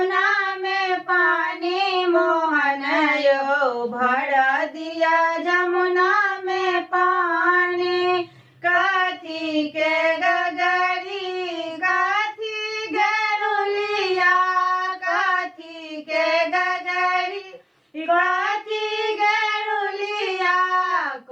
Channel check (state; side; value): identical; both; correlation 1.00